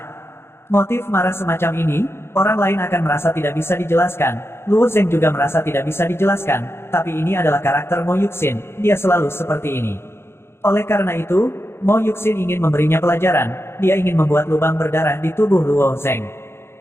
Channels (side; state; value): right; late; 0.12 ms